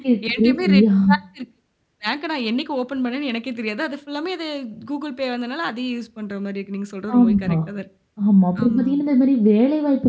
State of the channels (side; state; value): both; identical; correlation 1.00